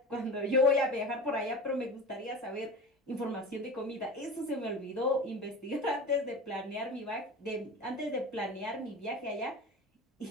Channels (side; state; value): both; normal; correlation 0.33